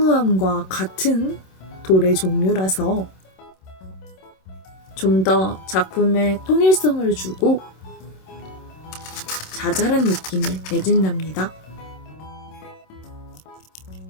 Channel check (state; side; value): late; right; 27 ms